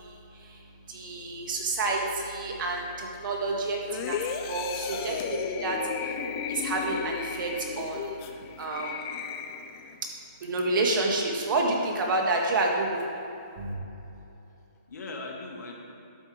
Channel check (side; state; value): both; inverted; correlation -0.36